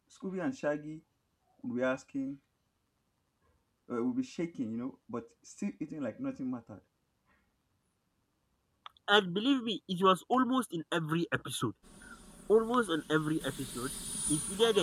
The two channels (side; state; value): both; identical; correlation 1.00